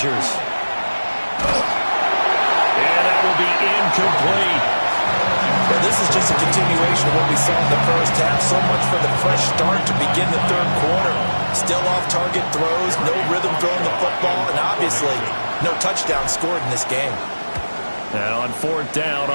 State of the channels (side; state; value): both; inverted; correlation -1.00